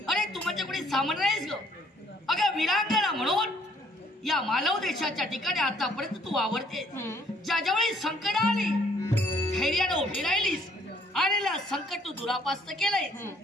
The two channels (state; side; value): normal; both; correlation 0.63